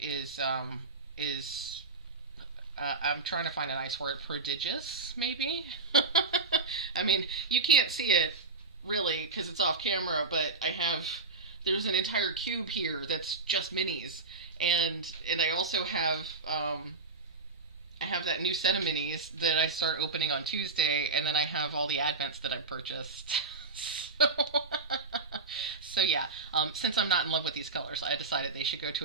I'm trying to find a nice word, prodigious, maybe? I mean, you can't see it really because it's off camera, but there's an entire cube here that's just minis, and I also have I have that new set of minis that I start opening on Tuesday, and then I have all the advents that I purchased. So yeah, since I'm not in love with these colors, I decided they should go to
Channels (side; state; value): left; quieter; 4.0 dB